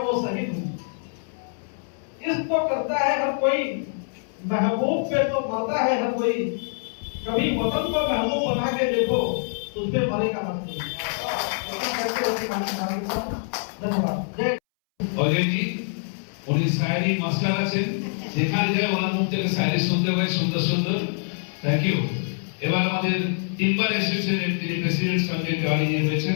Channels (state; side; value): silent; right; 62 dB below the other